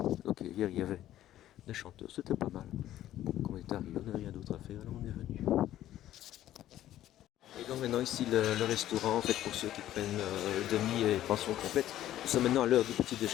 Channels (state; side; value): quieter; right; 12.9 dB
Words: Donc hier il y avait des chanteurs, c'était pas mal. Bon, quand on est arrivé, on n'avait rien d'autre à faire, alors on est venu. Et donc maintenant ici le restaurant, en fait pour ceux qui prennent demi et pension complète. Nous sommes maintenant à l'heure du petit